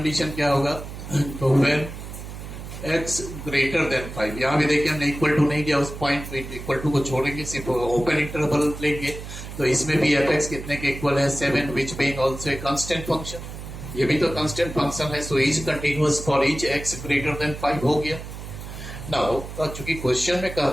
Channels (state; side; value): noise; right; hum, 10 dB below the sound